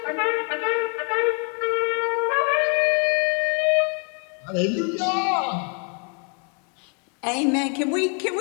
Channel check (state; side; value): quieter; right; 38.1 dB